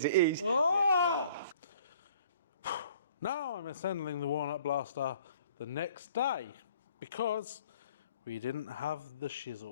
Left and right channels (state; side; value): inverted; both; correlation -0.55